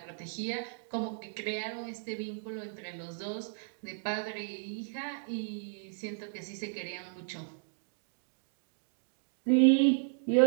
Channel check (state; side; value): silent; left; digital silence